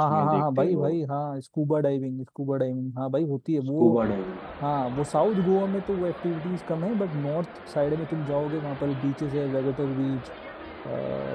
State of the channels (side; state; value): both; identical; correlation 1.00